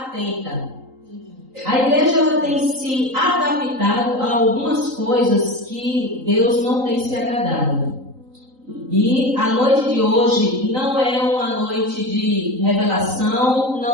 A igreja, ela tem se adaptado a algumas coisas que Deus não tem se agradado. E a noite de hoje não é uma noite de revelação,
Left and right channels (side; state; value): left; late; 3.8 ms